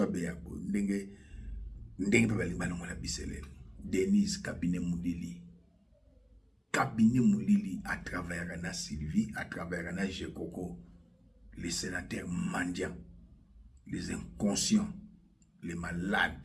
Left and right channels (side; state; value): both; identical; correlation 1.00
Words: Beyabo ndenge pe balongola biselele Denise cabinet Moulili à travers na Sylvie à travers na Jekoko les sénateurs mendiants les inconscients les